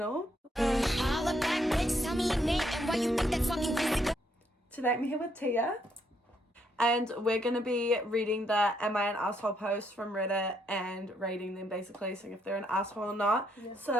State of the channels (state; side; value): normal; both; correlation 0.74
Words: Today I'm here with Tia. And we're going to be reading the Am I an Asshole posts from Reddit and rating them basically, seeing if they're an asshole or not. Yeah.